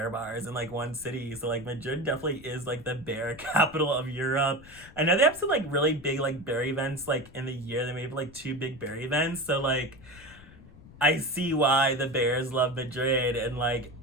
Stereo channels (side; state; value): left; noise; rumble, 21 dB below the sound